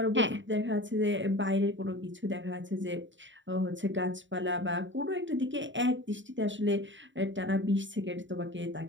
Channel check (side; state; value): left; late; 0.54 ms